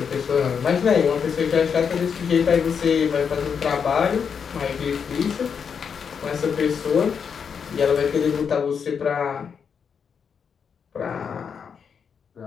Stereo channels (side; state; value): right; quieter; 6.7 dB